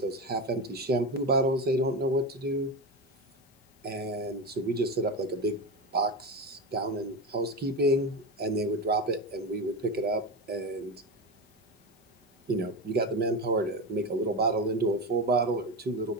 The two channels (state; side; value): normal; both; correlation 0.19